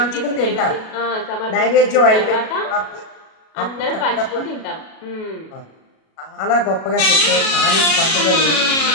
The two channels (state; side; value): late; right; 37 ms